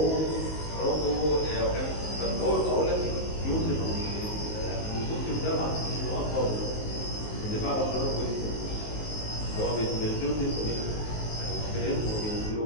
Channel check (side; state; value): right; late; 19 ms